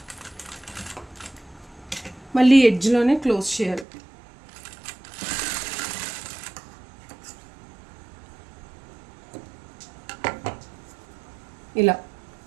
మళ్ళీ ఎడ్జ్లోనే క్లోజ్ చేయాలి. ఇలా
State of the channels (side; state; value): left; drops out; at 3.9 s